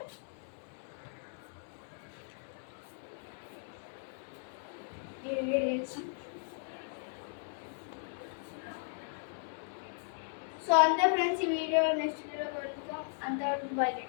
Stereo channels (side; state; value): right; silent; 53 dB below the other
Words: సో అంతే ఫ్రెండ్స్, ఈ వీడియో నెక్స్ట్ వీడియో కలుద్దాం. అంతవరకు బై.